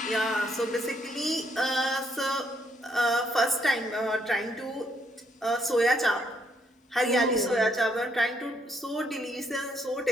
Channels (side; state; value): both; normal; correlation 0.72